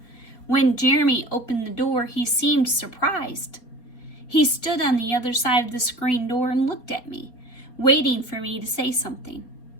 When Jeremy opened the door, he seemed surprised. He stood on the other side of the screen door and looked at me, waiting for me to say something.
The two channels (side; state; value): right; late; 4.3 ms